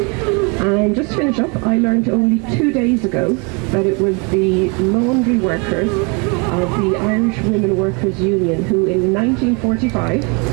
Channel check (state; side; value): quieter; left; 32.1 dB